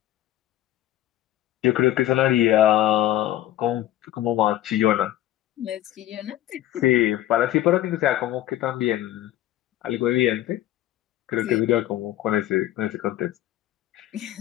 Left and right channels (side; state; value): right; quieter; 13.7 dB